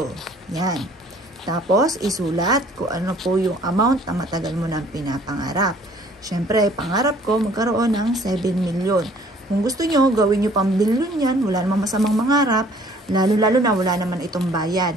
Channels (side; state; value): both; normal; correlation 0.56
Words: Yan. Tapos, isulat kung ano po yung amount na matagal mo nang pinapangarap. Siyempre, pangarap ko magkaroon ng 7 million. Kung gusto nyo, gawin nyo pang billion yan. Wala namang masamang mangarap. Lalo-lalo na wala naman itong bayad.